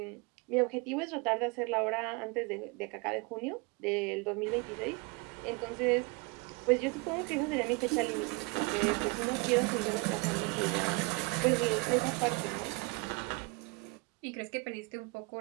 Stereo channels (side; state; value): left; quieter; 27.8 dB